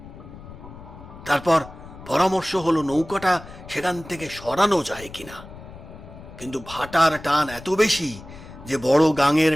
তারপর পরামর্শ হলো নৌকাটা সেখান থেকে সরানো যায় কিনা। কিন্তু ভাটার টান এত বেশি যে বড় গাঙের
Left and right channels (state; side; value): noise; left; rumble, 16 dB below the sound